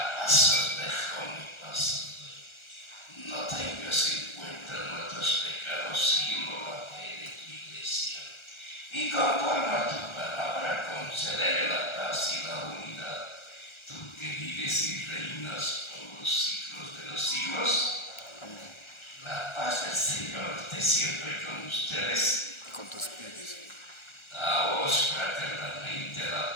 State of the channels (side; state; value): right; late; 1.4 ms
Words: paz os dejo, mi paz os doy. No tengas en cuenta nuestros pecados, sino la fe de tu iglesia. Y conforme a tu palabra, concederé la paz y la unidad. Tú que vives y reinas por los siglos de los siglos. La paz del Señor esté siempre con ustedes. Con tu espíritu. Daos fraternalmente